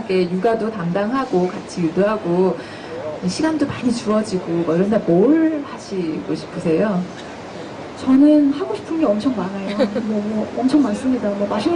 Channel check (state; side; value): identical; both; correlation 1.00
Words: 육아도 담당하고 같이 유도하고 시간도 많이 주어지고 뭐 이런 날 뭘 하시고 싶으세요? 저는 하고 싶은 게 엄청 많아요. 뭐 엄청 많습니다. 뭐